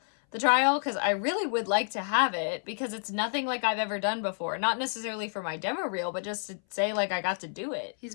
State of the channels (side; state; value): right; silent; 58 dB below the other